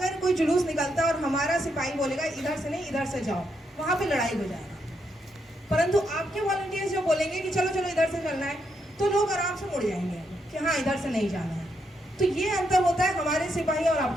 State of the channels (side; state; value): both; normal; correlation 0.79